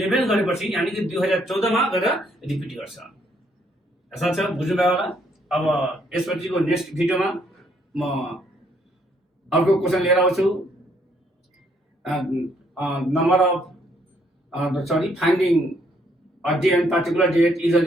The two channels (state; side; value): normal; both; correlation 0.69